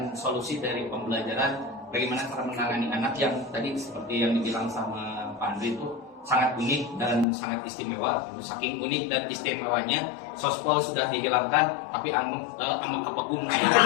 solusi dari pembelajaran bagaimana cara menangani anak yang tadi seperti yang dibilang sama Pak Andri itu sangat unik dan sangat istimewa. Saking unik dan istimewanya, sospol sudah dihilangkan, tapi amang kepegung.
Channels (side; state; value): right; drops out; at 7.2 s